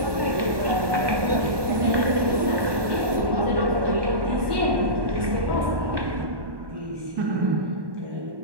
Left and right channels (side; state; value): left; late; 1.2 ms